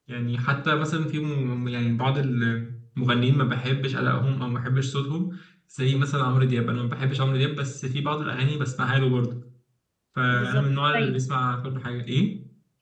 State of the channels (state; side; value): identical; both; correlation 1.00